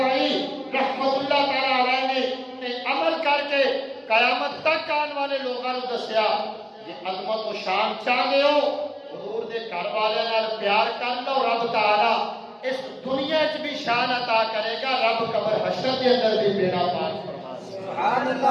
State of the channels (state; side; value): identical; both; correlation 1.00